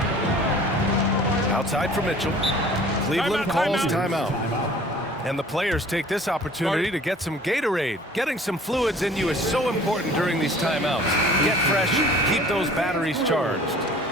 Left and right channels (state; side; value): normal; both; correlation 0.49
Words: Outside for Mitchell. Cleveland calls timeout. And the players take this opportunity to get some Gatorade. Getting some fluids in you is so important during these timeouts. Get fresh, keep those batteries charged.